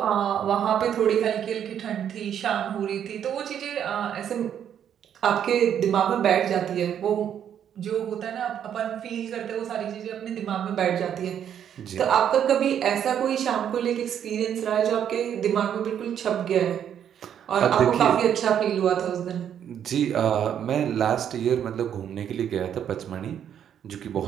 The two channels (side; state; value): left; quieter; 9.2 dB